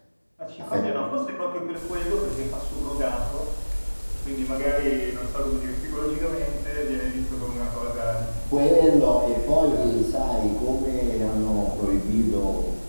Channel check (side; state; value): both; inverted; correlation -1.00